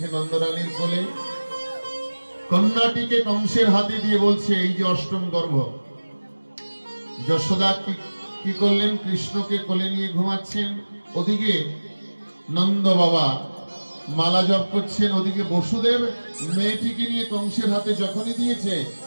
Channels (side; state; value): both; inverted; correlation -1.00